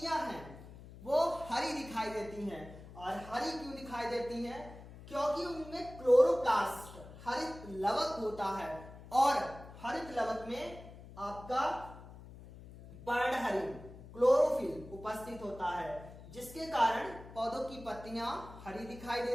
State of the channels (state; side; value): noise; left; hum, 16 dB below the sound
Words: हैं वो हरी दिखाई देती हैं। और हरी क्यों दिखाई देती हैं? क्योंकि उनमें क्लोरोप्लास्ट हरित लवक होता है और हरित लवक में आपका पर्णहरित क्लोरोफिल उपस्थित होता है, जिसके कारण पौधों की पत्तियां हरी दिखाई